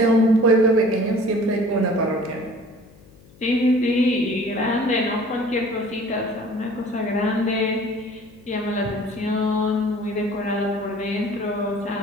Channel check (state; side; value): noise; left; hum, 25 dB below the sound